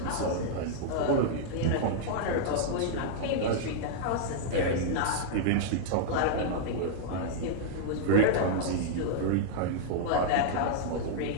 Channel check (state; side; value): different; both; correlation -0.01